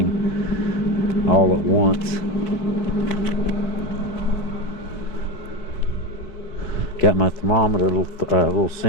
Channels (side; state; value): right; late; 4.6 ms